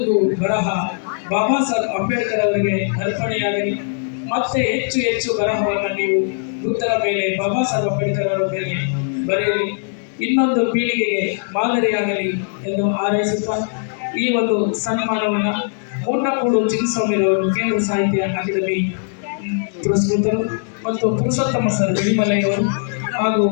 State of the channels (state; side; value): silent; right; 66 dB below the other